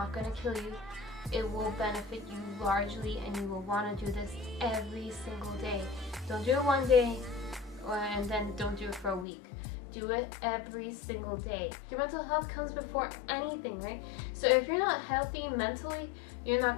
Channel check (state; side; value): drops out; right; at 9.2 s